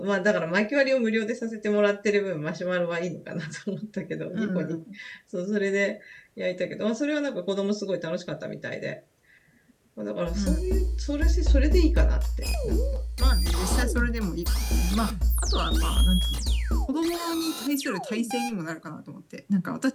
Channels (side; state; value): both; identical; correlation 1.00